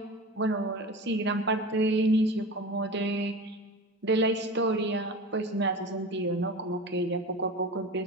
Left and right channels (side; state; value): both; normal; correlation 0.31